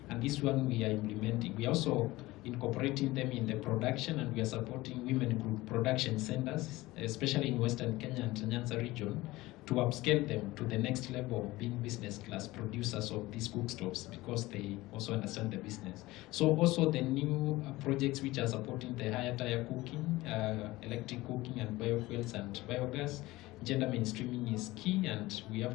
And this one we are implementing. We are also incorporating them in the production, and we are supporting women group production centers, especially in Western Kenya and Nyanza region, to upscale them to the next level of being business class producers of these cookstoves, because they also understand the business. So also the new projects which are supporting the higher tier cooking, electric cooking and biofuels and biogas, gender mainstreaming is key, and we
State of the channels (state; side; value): quieter; right; 19.1 dB